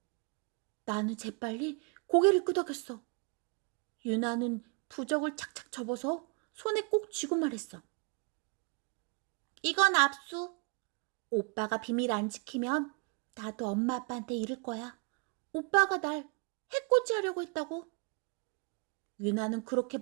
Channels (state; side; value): quieter; left; 34.3 dB